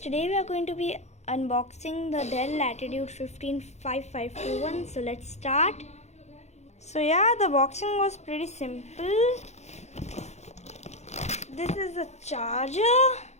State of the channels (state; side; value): late; right; 0.32 ms